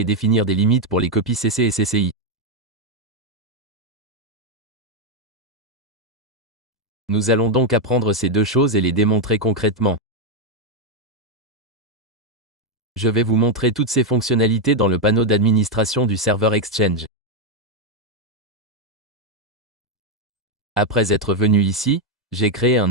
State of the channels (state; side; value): normal; both; correlation 0.02